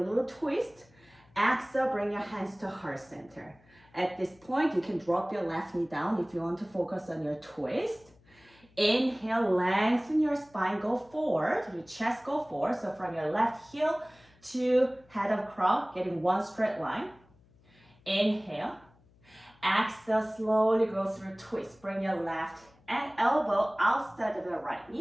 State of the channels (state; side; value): noise; left; hum, 29 dB below the sound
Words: a little twist. Exhale, bring your hands to heart center. At this point, you can drop your left knee down if you want to focus on your twist. Inhale, lengthen your spine, go forward, your chest go forward. So from your left heel to head of crown, getting one straight line. Inhale. Exhale, slowly go through twist. Bring your left and elbow outside of your right